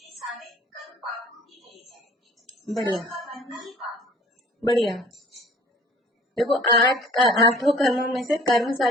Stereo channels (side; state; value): both; normal; correlation 0.50